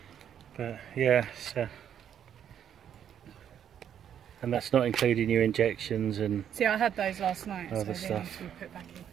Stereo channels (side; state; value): left; quieter; 9.3 dB